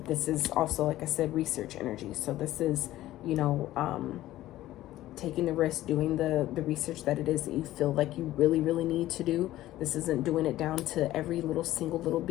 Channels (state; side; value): quieter; right; 15.0 dB